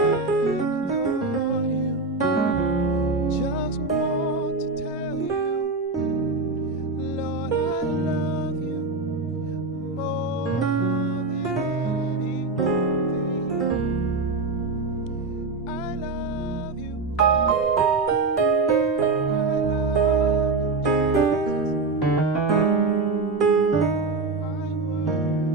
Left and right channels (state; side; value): quieter; left; 3.7 dB